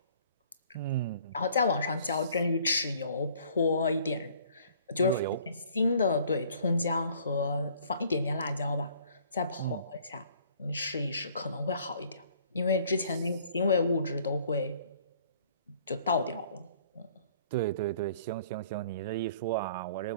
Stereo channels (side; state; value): both; inverted; correlation -0.57